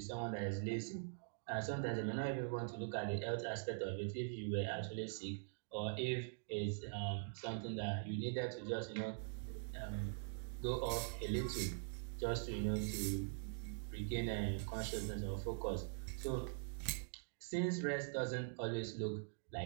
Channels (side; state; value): left; silent; digital silence